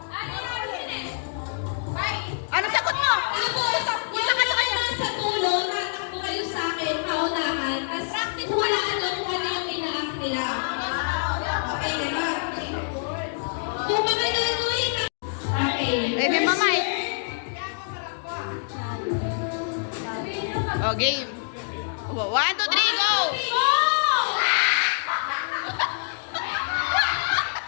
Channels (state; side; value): silent; right; digital silence